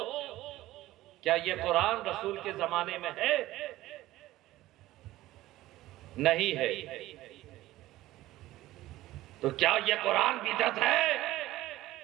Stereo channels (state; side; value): quieter; left; 16.2 dB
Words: کیا یہ قرآن رسول کے زمانے میں ہے؟ نہیں ہے۔ تو کیا یہ قرآن بدعت ہے؟